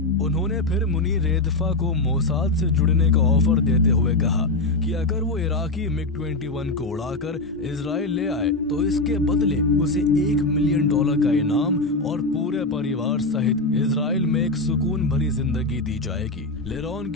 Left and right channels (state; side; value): quieter; right; 3.0 dB